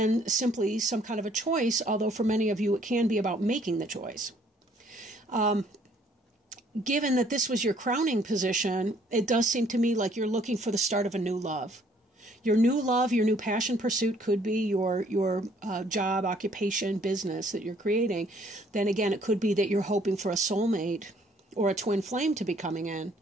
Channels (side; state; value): both; normal; correlation 0.62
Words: simply some kind of a choice, although for many of you it can be about making the choice. given that this was your crowning position, it does seem to me like you're looking for the start of a new love. Your new love, your new passion pursuit could be your job, occupation, business that you're creating. Then again, it could be that you're hoping for a soulmate or a twin flame to be coming in.